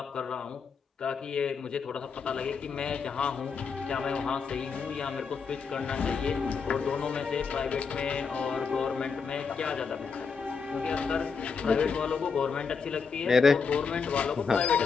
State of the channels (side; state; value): right; quieter; 5.5 dB